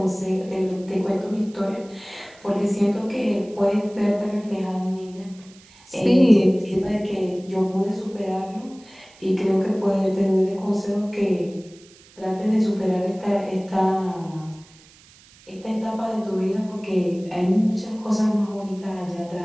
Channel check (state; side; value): noise; right; hiss, 25 dB below the sound